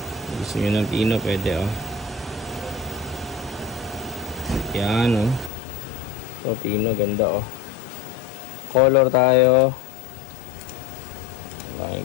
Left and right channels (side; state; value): right; drops out; at 5.5 s